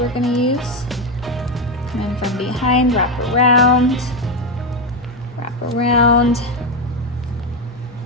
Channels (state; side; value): normal; both; correlation 0.10